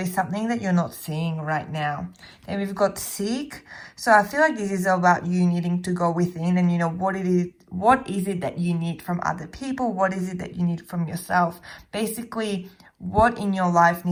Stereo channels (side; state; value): both; identical; correlation 1.00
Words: is something that you're not seeing right now. Then we've got seek. So I feel like this is about you needing to go within, and you know, what is it that you need from other people? What is it that you need from yourself? Basically, what in your life